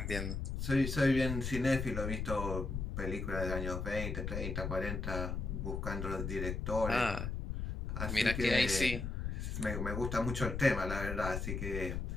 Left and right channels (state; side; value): noise; left; rumble, 3 dB below the sound